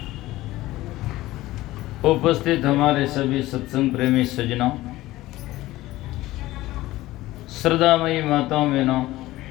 उपस्थित हमारे सभी सत्संग प्रेमी सज्जनों, श्रद्धामयी माताओं बहनों,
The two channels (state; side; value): quieter; right; 17.1 dB